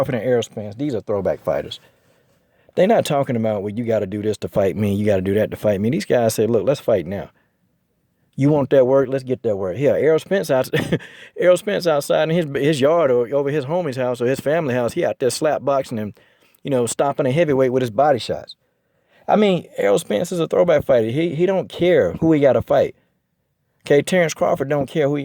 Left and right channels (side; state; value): both; identical; correlation 1.00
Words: and Errol Spence, these are throwback fighters. They're not talking about, well, you got to do this to fight me, you got to do that to fight me. These guys say, look, let's fight now. You want that work? Let's get that work. Here, Errol Spence outside in his yard or over his homie's house or his family house. He out there slap boxing and, you know, stopping a heavyweight with his body shots. I mean, Errol Spence is a throwback fighter. He don't care who he got to fight. Okay, Terence Crawford don't care who he